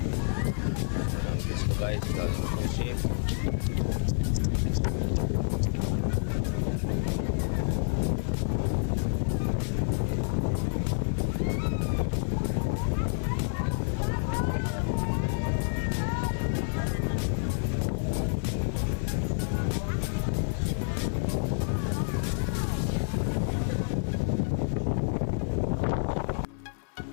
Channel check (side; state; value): right; silent; 59 dB below the other